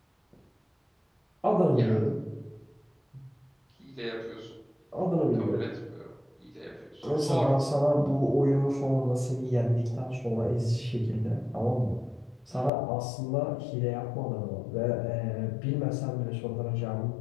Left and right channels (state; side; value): drops out; right; at 12.7 s